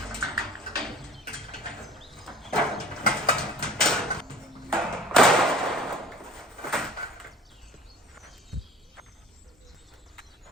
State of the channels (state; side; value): normal; both; correlation 0.47